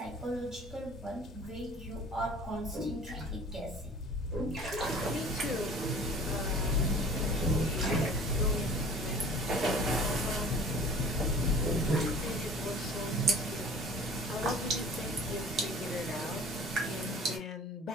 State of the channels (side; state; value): both; normal; correlation 0.45